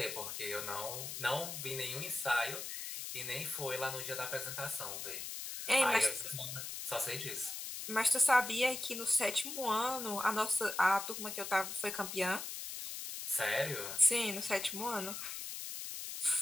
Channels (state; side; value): noise; left; hiss, 6 dB below the sound